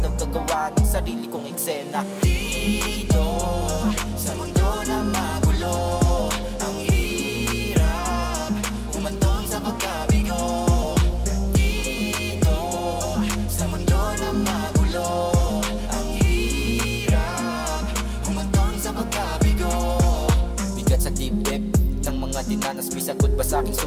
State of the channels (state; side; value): identical; both; correlation 1.00